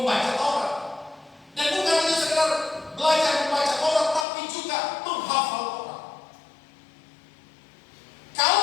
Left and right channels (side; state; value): right; drops out; at 4.2 s